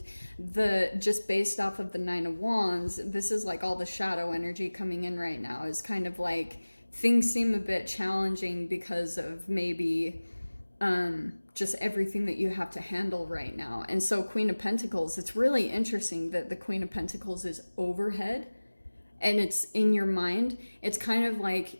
just based off of the Nine of Wands, this is like all the shadow energy coming in right now is kind of like things seem a bit challenging because of maybe just everything that you have to handle right now. And so Queen of Pentacles, it's really interesting that the Queen of Pentacles is overhead and it's in your mind. It's kind of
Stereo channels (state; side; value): inverted; both; correlation -1.00